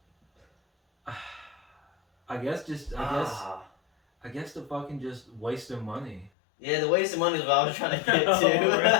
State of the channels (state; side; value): drops out; right; at 6.3 s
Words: I guess the fucking just wasting money. Yeah, the waste of money is what I was trying to get to. Oh,